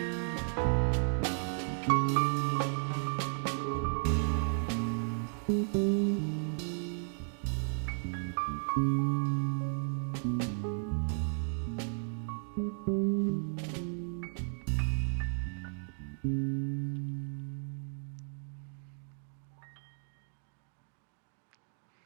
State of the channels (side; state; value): left; silent; digital silence